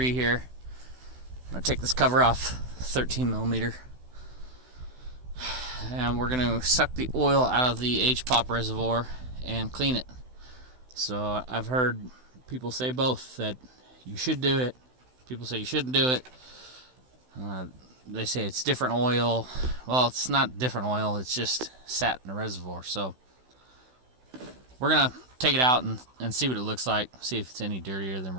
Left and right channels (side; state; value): left; late; 16 ms